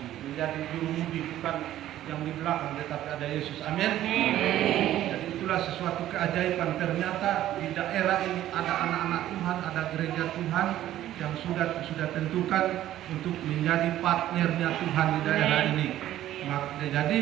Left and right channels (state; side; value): quieter; left; 13.0 dB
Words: menjadi jurumudi, bukan yang di belakang, tetapi ada Yesus. Amin. Jadi itulah sesuatu keajaiban. Ternyata di daerah ini ada anak-anak Tuhan, ada gereja Tuhan yang sudah tentukan untuk menjadi partnernya Tuhan di daerah ini. Jadi